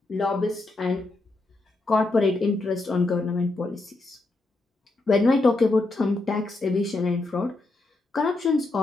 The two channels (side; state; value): right; quieter; 3.0 dB